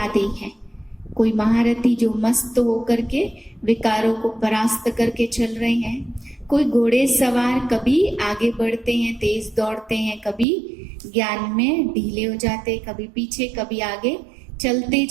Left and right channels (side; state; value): left; drops out; at 10.5 s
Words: है। कोई महारथी जो मस्त होकर के विकारों को परास्त करके चल रहे हैं, कोई घोड़े सवार कभी आगे बढ़ते हैं, तेज दौड़ते हैं, कभी ज्ञान में ढीले हो जाते हैं, कभी पीछे कभी आगे चलते